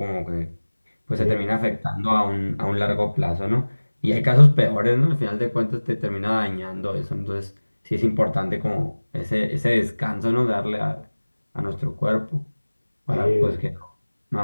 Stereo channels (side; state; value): both; inverted; correlation -1.00